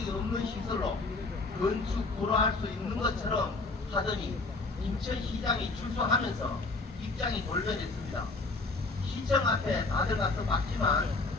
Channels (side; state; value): right; quieter; 3.5 dB